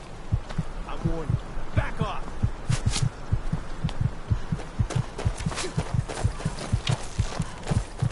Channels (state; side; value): identical; both; correlation 1.00